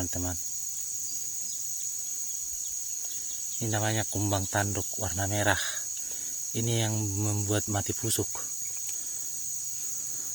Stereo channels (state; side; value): noise; right; hiss, 11 dB below the sound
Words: Ini namanya kumbang tanduk warna merah. Ini yang membuat mati pusuk.